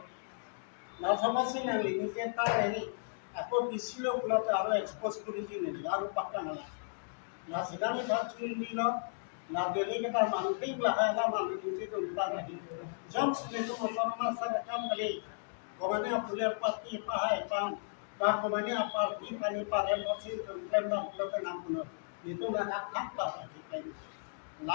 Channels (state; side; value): silent; right; digital silence